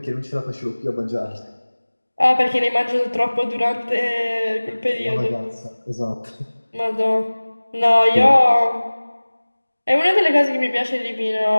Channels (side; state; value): both; inverted; correlation -1.00